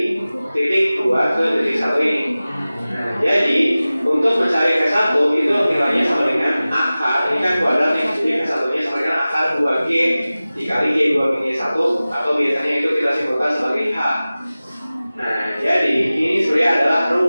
titik 2 ke titik 1 ini. Nah, jadi untuk mencari K1 itu nilainya sama dengan akar, ini kan kuadrat nih, jadi K1 nya sama dengan akar 2G dikali G2-1, atau biasanya itu kita simpulkan sebagai H. Nah, jadi ini sebenarnya adalah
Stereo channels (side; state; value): both; inverted; correlation -0.97